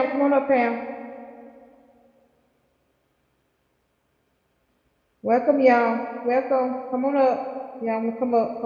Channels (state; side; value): identical; both; correlation 1.00